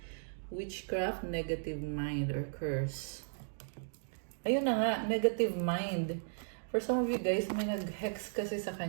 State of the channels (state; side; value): silent; left; digital silence